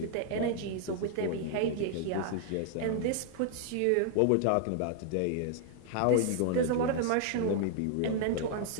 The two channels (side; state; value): both; different; correlation 0.00